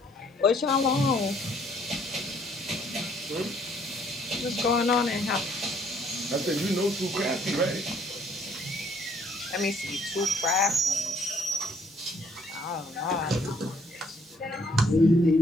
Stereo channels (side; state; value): both; normal; correlation 0.64